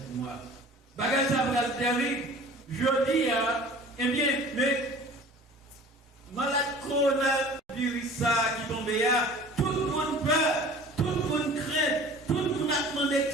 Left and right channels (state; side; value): normal; both; correlation 0.45